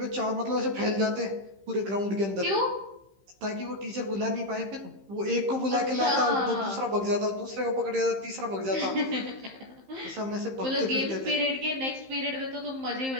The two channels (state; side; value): late; left; 15 ms